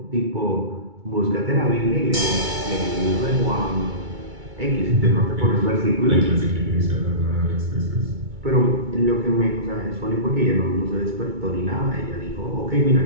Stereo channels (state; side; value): late; left; 2.3 ms